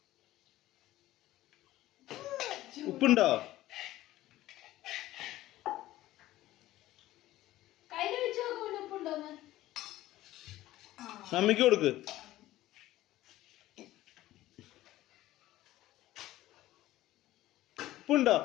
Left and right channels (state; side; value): quieter; right; 15.5 dB